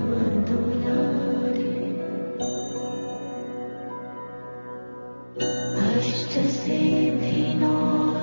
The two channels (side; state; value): both; inverted; correlation -1.00